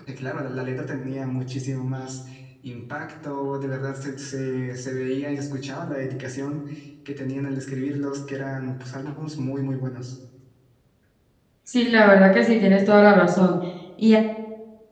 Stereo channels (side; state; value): both; identical; correlation 1.00